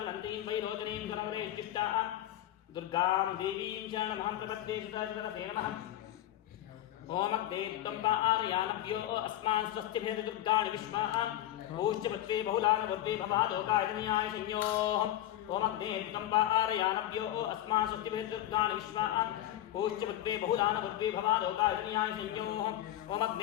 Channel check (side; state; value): right; quieter; 13.3 dB